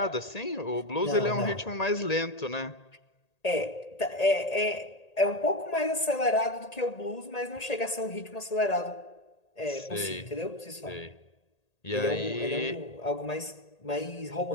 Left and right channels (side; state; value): right; late; 1.8 ms